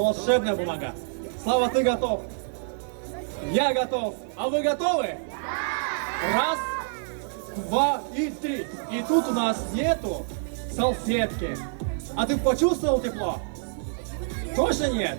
бумага. Слава, ты готов? Я готов. А вы готовы? Да. Раз, два и три. И тут у нас нету салфетки. А ты почувствовал тепло? Точно нет?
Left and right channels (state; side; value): silent; left; digital silence